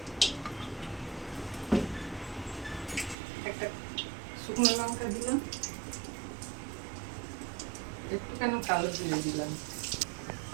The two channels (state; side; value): drops out; left; at 3.2 s